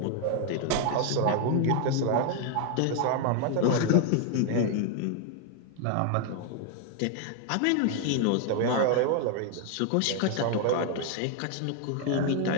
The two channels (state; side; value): different; both; correlation 0.00